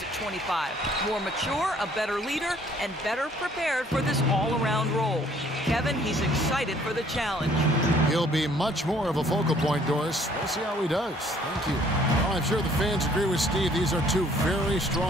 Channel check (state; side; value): normal; both; correlation 0.60